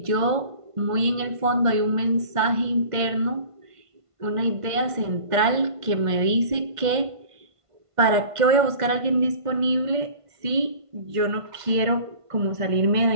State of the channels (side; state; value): left; late; 1.5 ms